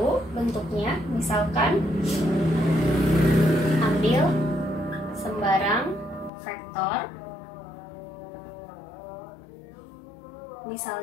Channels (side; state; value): right; drops out; at 6.3 s